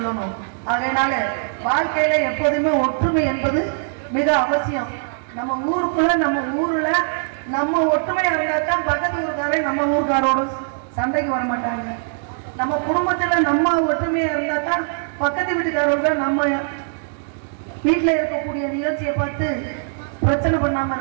அதனால வாழ்க்கையில எப்போதுமே ஒற்றுமை என்பது மிக அவசியம். நம்ம ஊருக்குள்ள, நம்ம ஊர்ல நம்ம ஒற்றுமையா இருந்தா தான் பக்கத்து ஊருக்காரே நம்ம ஊருக்காரோட சண்டைக்கு வர மாட்டாங்க. நம்ம குடும்பத்துல நம்ம ஒற்றுமையா இருந்தா தான் பக்கத்து வீட்டுக்காரங்க நம்ம வீட்டுல இருக்கக்கூடிய நிகழ்ச்சியை பார்த்து பிரச்சனை பண்ணாம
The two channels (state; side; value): silent; left; digital silence